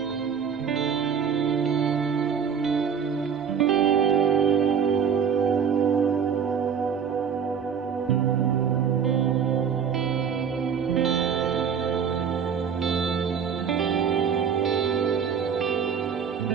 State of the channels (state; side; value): quieter; left; 7.2 dB